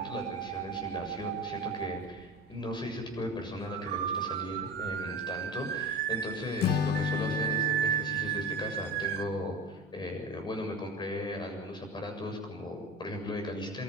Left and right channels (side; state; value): both; normal; correlation 0.31